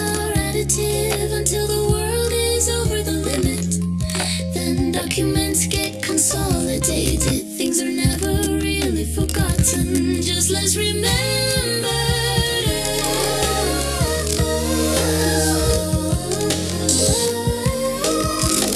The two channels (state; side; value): identical; both; correlation 1.00